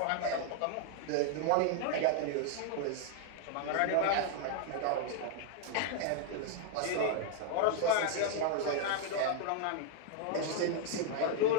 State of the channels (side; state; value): both; different; correlation 0.00